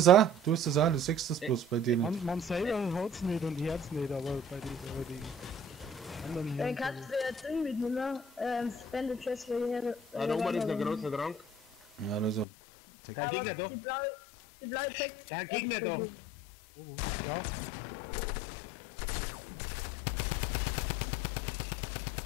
auch, du sechst das bloß bei denen. Man selber hat's nicht und hört's nicht, aber bei den anderen Dann hier. kannst du ja Ding mitnehmen, Spende Chest für hier. Ah, da oben ist ein großer Trank. Ja, das ist ein Tech. Der Gegner da. Die blaue Tech. Der Gegner da. Ja,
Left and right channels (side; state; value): right; drops out; at 12.5 s